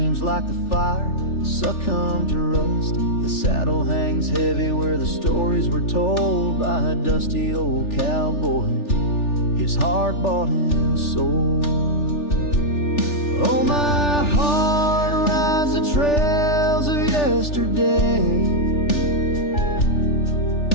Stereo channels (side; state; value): right; late; 3.4 ms